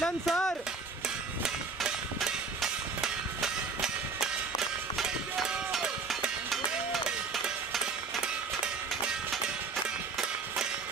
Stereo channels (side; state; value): left; quieter; 4.6 dB